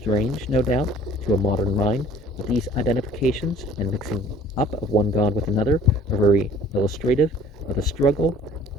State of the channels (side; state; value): both; normal; correlation 0.52